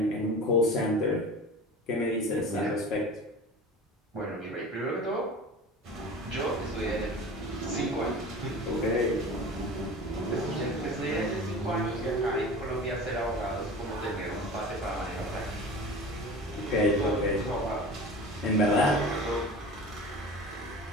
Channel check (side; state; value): both; normal; correlation 0.36